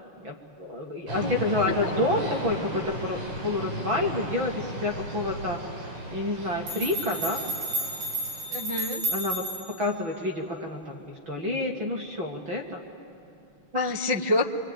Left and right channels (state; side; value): late; left; 5.7 ms